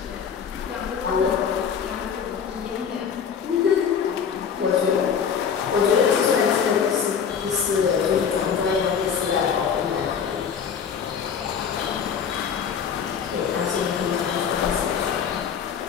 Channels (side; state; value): right; quieter; 7.1 dB